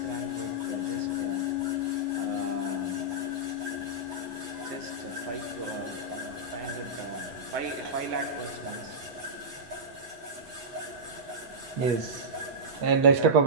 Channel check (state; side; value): late; left; 8.3 ms